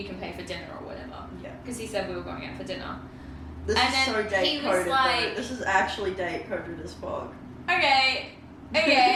can pay for dinner or whatever. Yeah. Because he said we were going out for dinner. This And is then so he date was coded. like- This is actually date coded as fuck. Okay.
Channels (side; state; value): both; identical; correlation 1.00